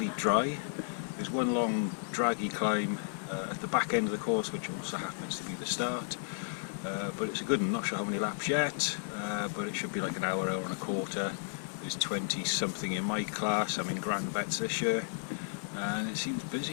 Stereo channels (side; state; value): right; silent; digital silence